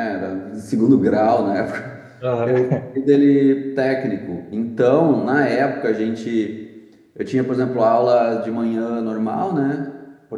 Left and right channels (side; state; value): both; identical; correlation 1.00